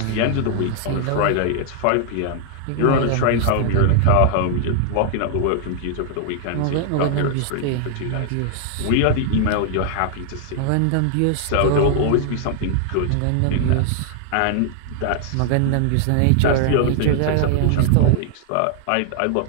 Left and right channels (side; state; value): both; different; correlation 0.00